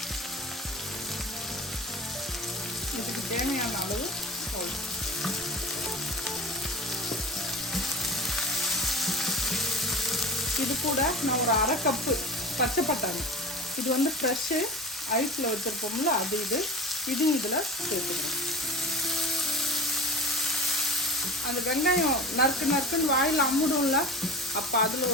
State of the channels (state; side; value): normal; both; correlation 0.35